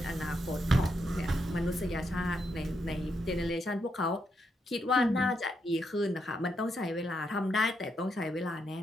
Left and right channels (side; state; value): both; normal; correlation 0.80